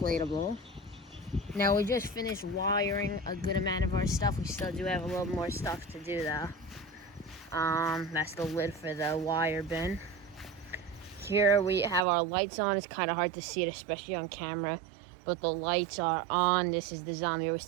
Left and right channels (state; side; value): drops out; left; at 12.1 s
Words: Now we just finished wiring a good amount of our stuff. We still do have a little more stuff to do though. That's the lid for the wire bin. Here we have our lights on. It's kind of hard to see it, especially on camera, but the lights are on. This is the zombie. We